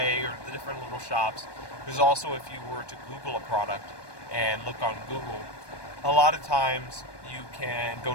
or the different little shops. There's also, if you were to Google a product and look on Google, a lot of times you can go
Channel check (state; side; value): late; right; 1.2 ms